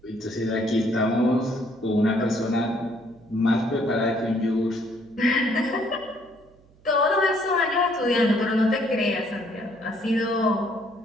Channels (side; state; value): right; noise; hum, 29 dB below the sound